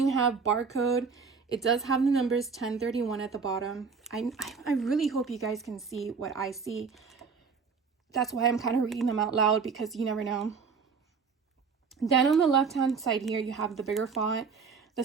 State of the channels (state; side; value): quieter; left; 5.4 dB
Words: have barcode. It does have the numbers 1031 at the bottom. I really hope you guys can see what I see. That's why I'm kind of reading them out loud, because you never know. Then on the left-hand side here, you have the bigger font that